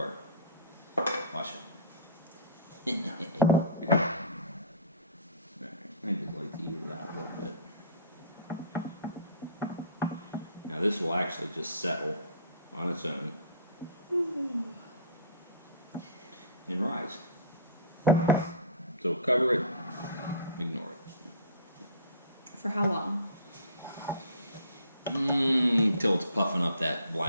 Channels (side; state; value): both; inverted; correlation -0.42